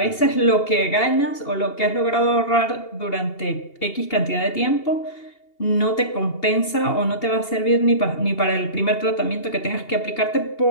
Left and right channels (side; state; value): right; late; 2.8 ms